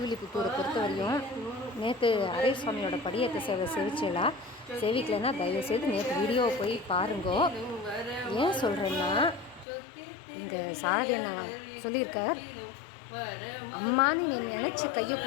பொறுத்தவரையும் நேற்று அரே சுவாமியோட படியேற்ற சேவை செவிச்சலா சேவிக்கலைன்னா தயவுசெய்து நேற்று வீடியோவை போய் பாருங்கோ. ஏன் சொல்கிறேன்னா, இந்த சாரதி நான் சொல்லியிருக்கார், அம்மான்னு நீ நினச்சி கையை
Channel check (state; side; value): drops out; right; at 9.7 s